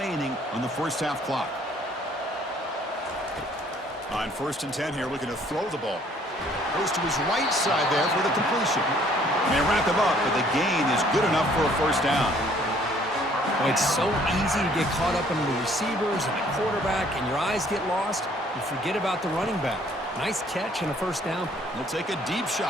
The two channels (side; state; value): both; normal; correlation 0.60